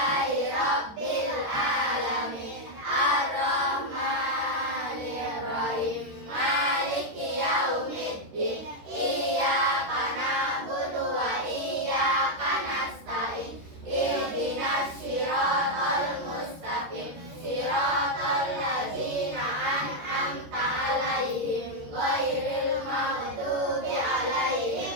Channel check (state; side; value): late; left; 13 ms